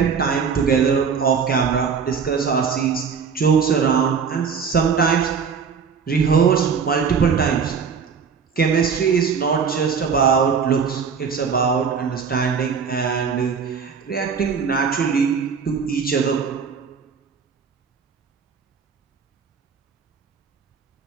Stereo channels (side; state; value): left; quieter; 6.2 dB